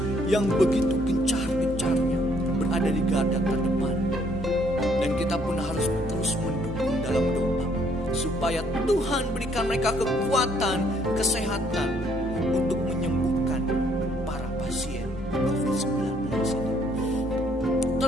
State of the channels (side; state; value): both; normal; correlation 0.66